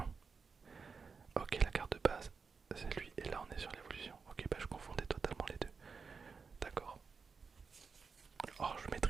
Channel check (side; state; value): left; quieter; 5.2 dB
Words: Ok, la carte de base, c'est lui, et là on est sur l'évolution. Ok, bah je confondais totalement les deux. D'accord. Oh, je